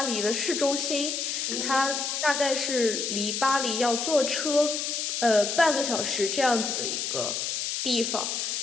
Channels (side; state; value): left; noise; hiss, 2 dB below the sound